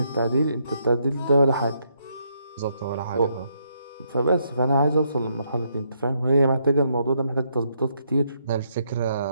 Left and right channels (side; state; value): both; inverted; correlation -0.75